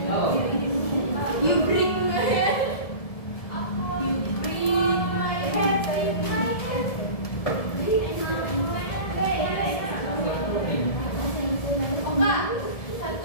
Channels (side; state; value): right; late; 1.7 ms